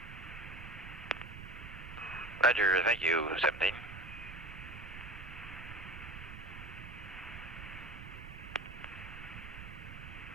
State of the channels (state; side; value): noise; right; rumble, 11 dB below the sound